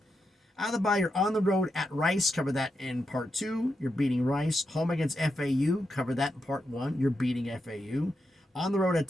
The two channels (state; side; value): normal; both; correlation 0.85